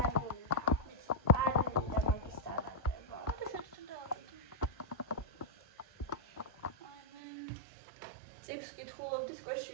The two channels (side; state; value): left; drops out; at 7.2 s